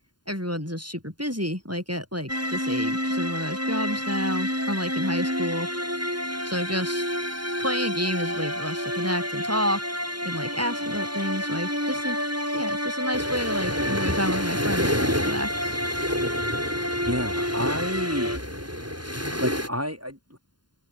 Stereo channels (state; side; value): late; left; 0.71 ms